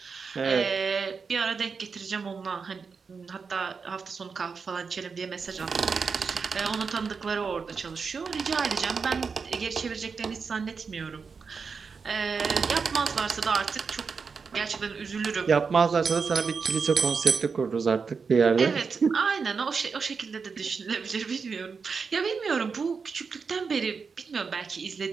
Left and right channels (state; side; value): quieter; left; 5.3 dB